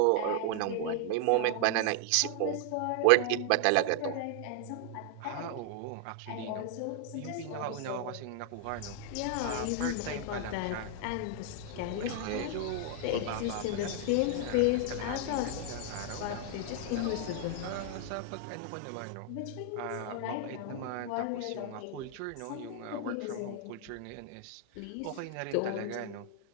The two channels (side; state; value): both; different; correlation 0.00